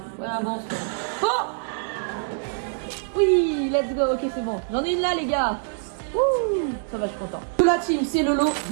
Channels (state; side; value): silent; left; digital silence